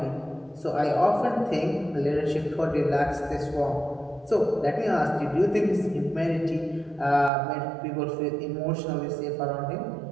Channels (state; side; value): drops out; left; at 7.3 s